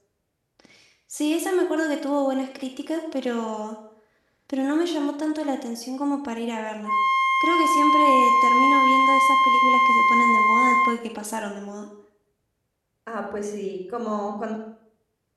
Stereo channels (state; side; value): identical; both; correlation 1.00